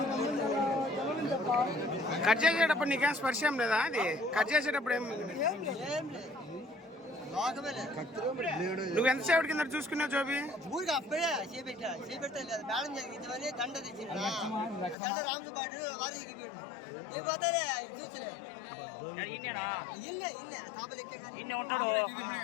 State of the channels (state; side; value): drops out; right; at 15.0 s